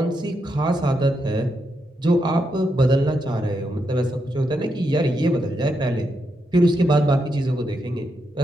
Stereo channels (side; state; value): both; normal; correlation 0.82